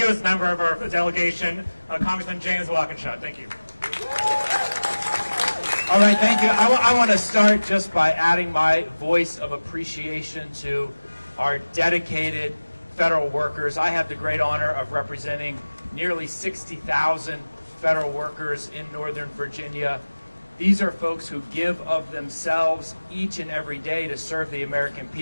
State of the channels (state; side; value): inverted; both; correlation -1.00